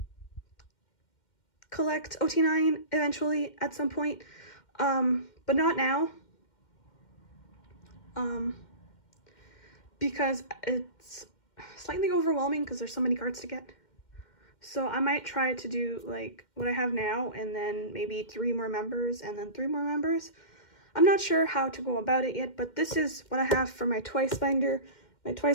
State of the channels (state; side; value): late; right; 2.1 ms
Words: collect OT9 eventually at some point, but not now. Because it's slightly overwhelming because there's so many cards to get. So I might try to do like what I have now, and then maybe 3 more members, and then 3 more members. I'm not sure how to go about it yet, but this is what I have for my Twice binder. My